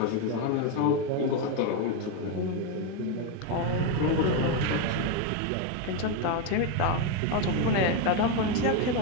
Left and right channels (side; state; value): both; different; correlation 0.02